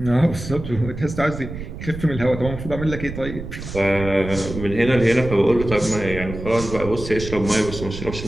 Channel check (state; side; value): noise; right; rumble, 9 dB below the sound